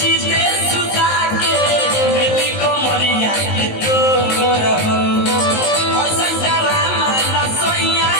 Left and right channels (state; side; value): late; right; 19 ms